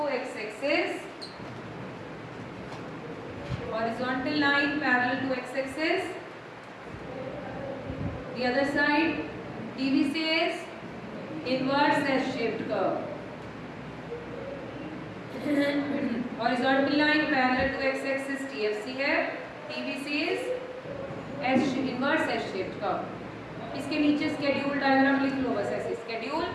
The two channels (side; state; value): both; identical; correlation 1.00